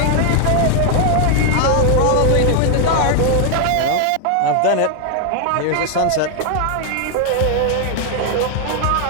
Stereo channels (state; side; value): different; both; correlation 0.00